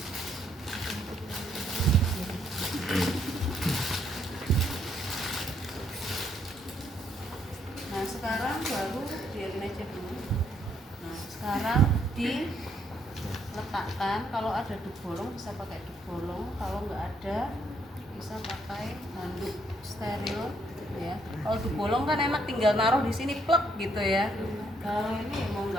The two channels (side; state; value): both; normal; correlation 0.71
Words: Nah, sekarang baru biarin aja dulu. Nah, sekarang diletakkan. Kalau ada dubolong bisa pakai dubolong, kalau nggak ada bisa pakai handuk steril ya. Kalau dubolong kan enak tinggal naruh di sini plek gitu ya. Kalau ini mau